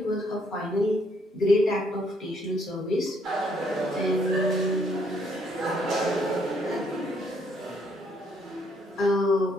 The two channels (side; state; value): both; normal; correlation 0.69